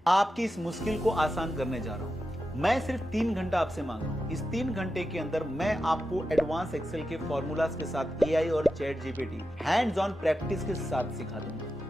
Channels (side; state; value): both; normal; correlation 0.90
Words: आपकी इस मुश्किल को आसान करने जा रहा हूं। मैं सिर्फ 3 घंटा आपसे मांग रहा हूं। इस 3 घंटे के अंदर मैं आपको एडवांस एक्सेल के फॉर्मूलाज के साथ एआई और chat GPT hands on practice के साथ सिखा